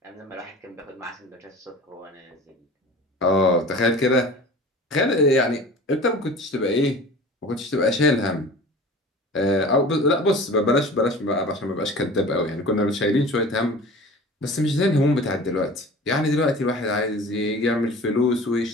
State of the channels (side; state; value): both; normal; correlation 0.40